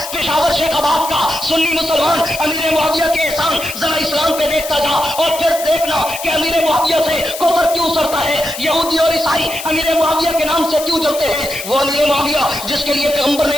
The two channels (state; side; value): noise; left; hiss, 10 dB below the sound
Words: پشاور شیخ آباد کا سنی مسلمان امیر معاویہ کے احسان ذرا اسلام پہ دیکھتا جا اور پھر دیکھنا کہ امیر معاویہ سے کفر کیوں سرتا ہے، یہودی اور عیسائی امیر معاویہ کے نام سے کیوں جلتے ہیں۔ وہ امیر معاویہ جس کے لیے پیغمبر نے